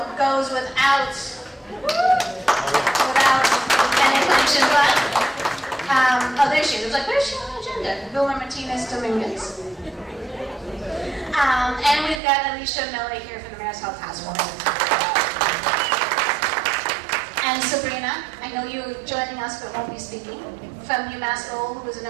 goes without any explanation, but oh, there she is. I was like, where's she on the agenda? Vilma Martinez Dominguez. And we've got Alicia Miller here from the Mayor's Health Task Force. And Sabrina, I know you're joining us but won't be speaking, from UMass Lowell, who was an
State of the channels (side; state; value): left; drops out; at 12.2 s